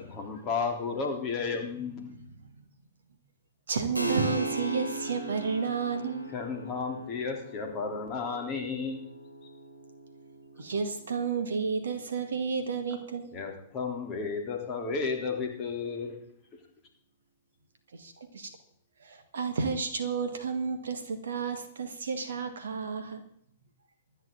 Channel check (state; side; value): inverted; both; correlation -0.42